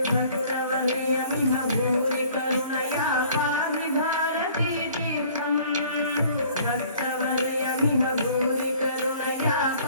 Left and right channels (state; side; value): inverted; both; correlation -0.54